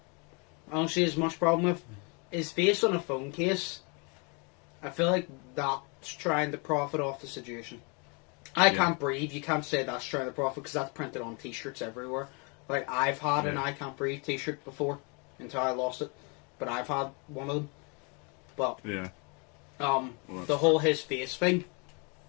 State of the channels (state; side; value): quieter; right; 33.2 dB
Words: I don't see as much problem with. Is based on a phone case. I feel like that's trying to profit off the situation. I Can't Breathe, you can't say that's trying to profit because that's printed on t-shirts everywhere. Like, I've had an I Can't Breathe t-shirt before until I lost it. But I've had one of them. But... yeah. The whole his face thing,